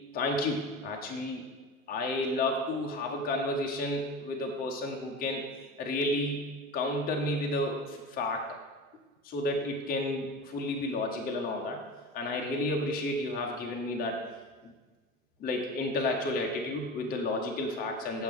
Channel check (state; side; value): normal; both; correlation 0.31